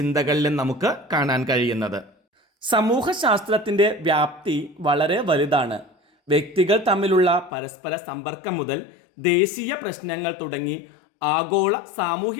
നമുക്ക് കാണാൻ കഴിയുന്നത്. സമൂഹശാസ്ത്രത്തിൻ്റെ വ്യാപ്തി വളരെ വലുതാണ്. വ്യക്തികൾ തമ്മിലുള്ള പരസ്പര സമ്പർക്കം മുതൽ ദേശീയ പ്രശ്നങ്ങൾ തുടങ്ങി ആഗോള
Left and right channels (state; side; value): drops out; right; at 7.5 s